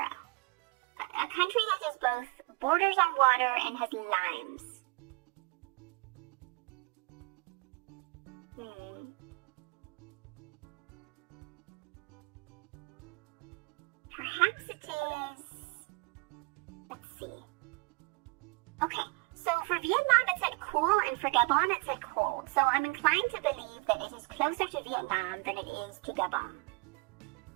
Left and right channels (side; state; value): left; quieter; 28.9 dB